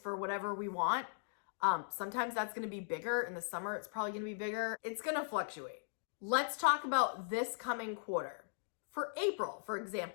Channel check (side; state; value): right; silent; digital silence